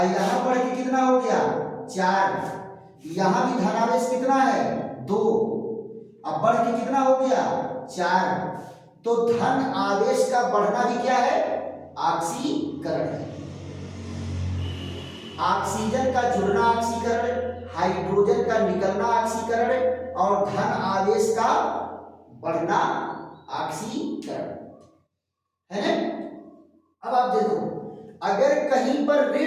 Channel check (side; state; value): both; identical; correlation 1.00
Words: यहां बढ़ के कितना हो गया? 4। यहां भी धनावेश कितना है? 2। अब बढ़ के कितना हो गया? 4। तो धन आवेश का बढ़ना भी क्या है? ऑक्सीकरण है। ऑक्सीजन का जुड़ना ऑक्सीकरण, हाइड्रोजन का निकलना ऑक्सीकरण और धन आवेश का बढ़ना ऑक्सीकरण है ना। अब आप देखो, अगर कहीं पर